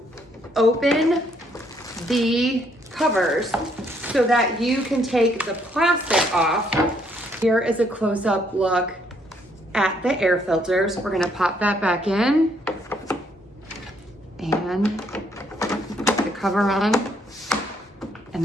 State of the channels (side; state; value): both; normal; correlation 0.69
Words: open the covers so that you can take the plastic off. Here is a close-up look at the air filters. We're gonna pop that back in and put the cover on, and